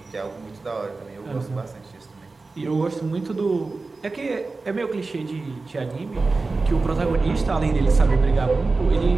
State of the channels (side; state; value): left; quieter; 3.7 dB